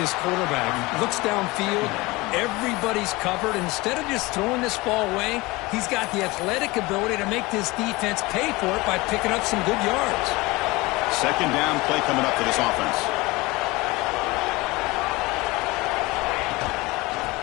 quarterback. Looks downfield, everybody's covered. Instead of just throwing this ball away, he's got the athletic ability to make this defense pay for it by picking up some good yards. 2nd down play coming up for this offense.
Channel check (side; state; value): right; quieter; 22.3 dB